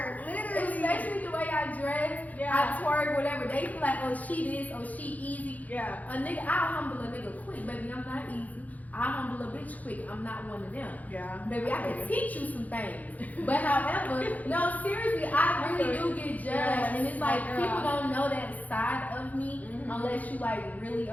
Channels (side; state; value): right; late; 0.077 ms